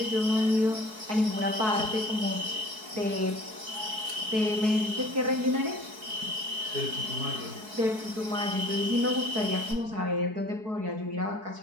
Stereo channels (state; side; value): late; left; 4.6 ms